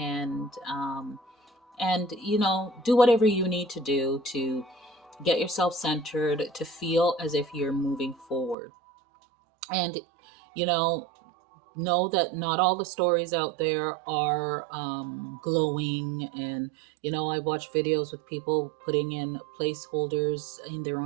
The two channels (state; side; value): drops out; left; at 8.6 s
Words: you know, do whatever you need to do to get yourself centered, to feel as if you're moving forward. And, you know that not all the stories out there are glowing. And, you know, I watch videos with people putting in placeholders in their